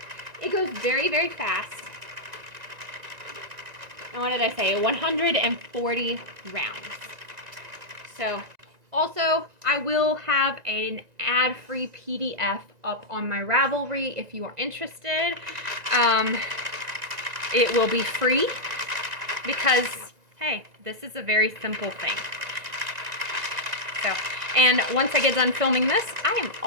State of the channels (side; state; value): left; late; 1.9 ms